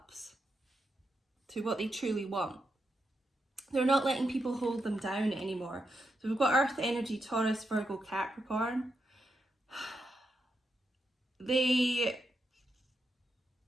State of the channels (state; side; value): normal; both; correlation 0.84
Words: to what they truly want. They're not letting people hold them down anymore. So we've got Earth energy, Taurus, Virgo, Capricorn. It's